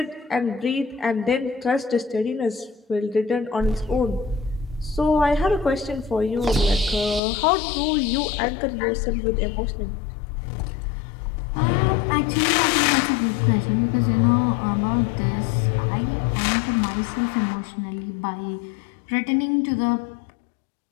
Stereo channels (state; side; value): drops out; right; at 7.2 s